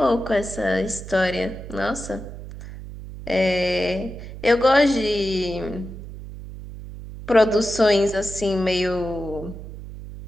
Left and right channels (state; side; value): noise; right; hum, 12 dB below the sound